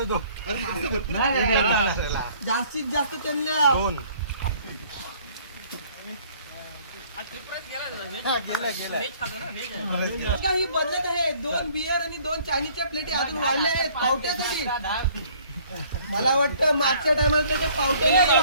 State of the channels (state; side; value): inverted; both; correlation -0.57